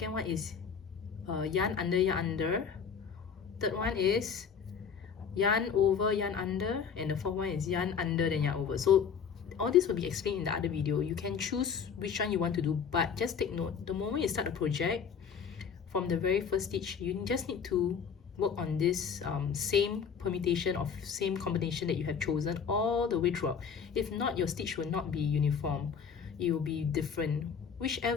one is yarn under. Third one is yarn over, yarn under, and the fourth one is yarn under then yarn over. So all this will be explained in the other video. You can choose which one you want to do, but just take note, the moment you start a project, from the very first stitch, you just need to work on this same permutation of same combination that you have chosen all the way throughout. If not, your stitch will not be uniform. It will be different.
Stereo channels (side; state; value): right; quieter; 6.6 dB